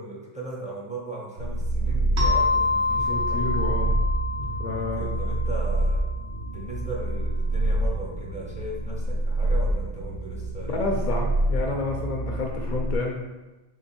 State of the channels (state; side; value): normal; both; correlation 0.38